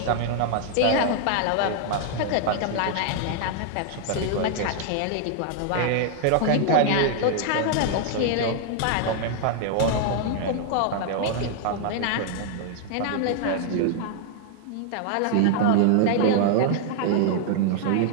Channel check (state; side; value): different; both; correlation 0.00